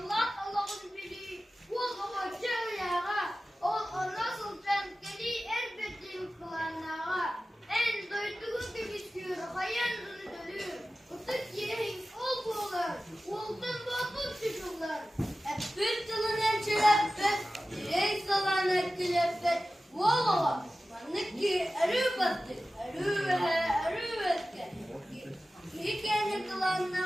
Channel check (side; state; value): both; normal; correlation 0.95